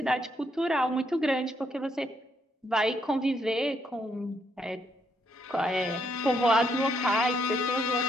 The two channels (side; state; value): both; normal; correlation 0.74